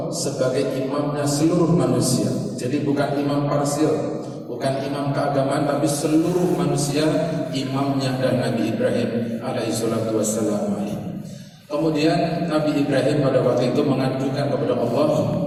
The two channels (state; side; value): identical; both; correlation 1.00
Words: sebagai imamnya seluruh manusia. Jadi bukan imam parsial, bukan imam keagamaan, tapi seluruh manusia imamnya dan Nabi Ibrahim alaihi salatu wassalam. Kemudian Nabi Ibrahim pada waktu itu mengajukan kepada Allah,